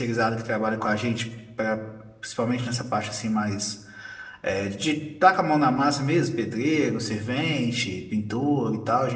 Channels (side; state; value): both; identical; correlation 1.00